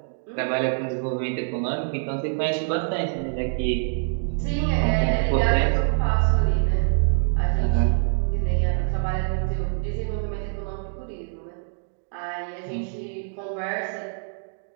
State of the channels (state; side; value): silent; left; digital silence